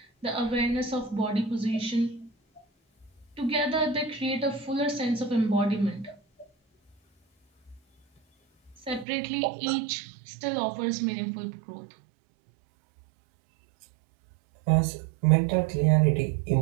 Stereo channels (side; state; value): left; drops out; at 9.1 s